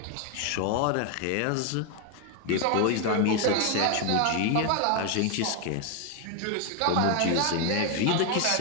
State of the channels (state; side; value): different; both; correlation 0.01